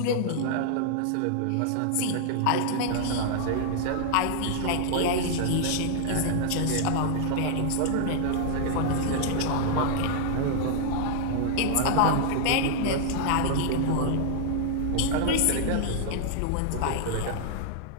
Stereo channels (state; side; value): different; both; correlation -0.01